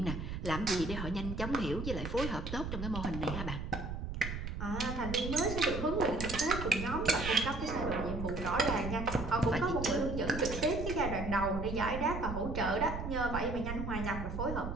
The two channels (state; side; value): noise; right; rumble, 5 dB below the sound